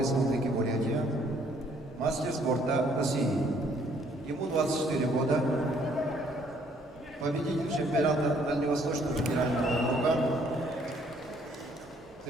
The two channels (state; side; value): normal; both; correlation 0.64